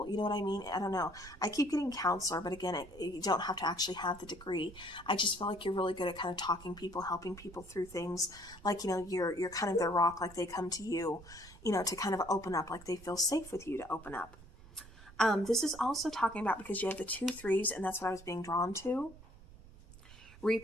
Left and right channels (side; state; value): right; noise; rumble, 19 dB below the sound